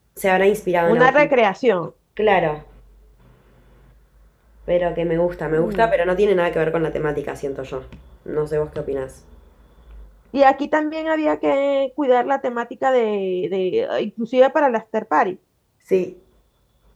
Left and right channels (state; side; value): identical; both; correlation 1.00